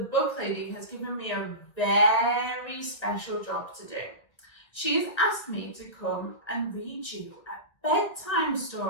lady, has given me a very special job to do. She's asked me to come and read you a bedtime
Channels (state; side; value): late; right; 1.9 ms